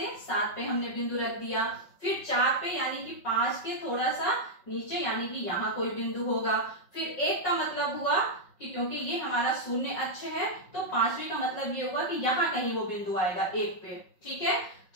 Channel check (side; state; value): right; late; 5.4 ms